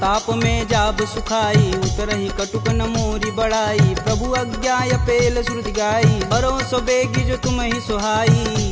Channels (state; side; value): identical; both; correlation 1.00